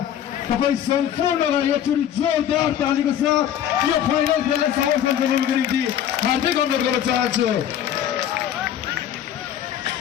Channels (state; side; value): quieter; right; 10.3 dB